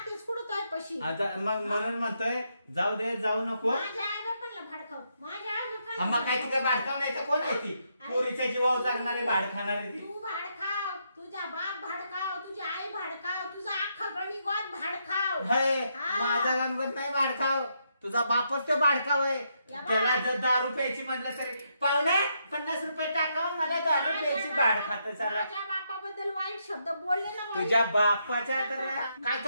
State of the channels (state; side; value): inverted; both; correlation -0.78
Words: कुठं तोय पशी. आता मग म्हणून म्हणतोय जाऊ दे, जाऊ नको. माझ्या आई बापांना भडकाव, माझ्या आई बापांना मग काय ती काय भाडकाव नाही का. कोण आहे ती पोरीच्या जीवावर जगणारी भाड खाणारी ती. तू भाडखाव, तुझा बाप भाडखाव, तुझी आई भाडखाव, तुझा अख्खा गणिगोत भाडखाव. हे हा. माझा गणपत नाही भाडखाव, तुझा बापच तो भाडखाव आहे. या बा. त्याला जर 10 रुपयाची म्हटलं तरी पाहुणे 50 रुपये टाकाव, मला 10 रुपयाची भाड खात चाला. माझ्या बापाबद्दल वाईट शब्द बोलले ना बाई. तुझ्या बापाच्या तर काय